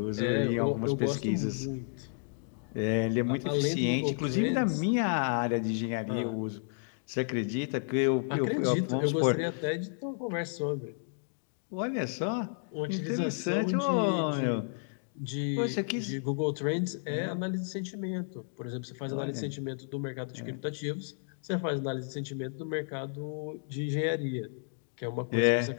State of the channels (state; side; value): silent; right; digital silence